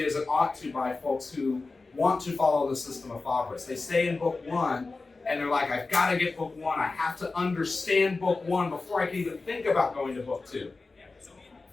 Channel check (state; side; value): quieter; right; 3.7 dB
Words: as it ought to by folks who want to follow the system of Fabris. They stay in Book 1, and they're like, I've got to get Book 1. I have to understand Book 1 before I can even think about going to Book 2.